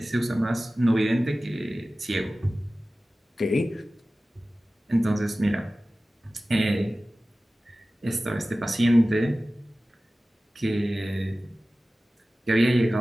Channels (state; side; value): normal; both; correlation 0.96